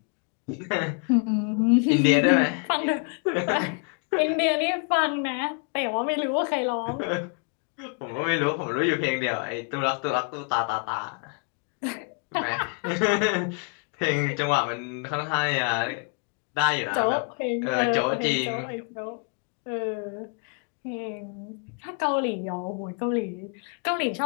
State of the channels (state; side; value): quieter; right; 36.3 dB